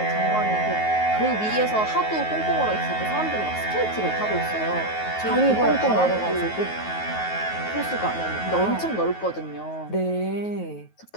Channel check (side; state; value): right; late; 9.3 ms